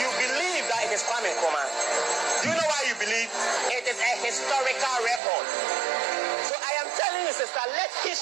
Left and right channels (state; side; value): drops out; left; at 5.2 s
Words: you believe that it is Kwame Nkrumah. Do you know why you believe? It is a historical record. So I am telling you, sister, let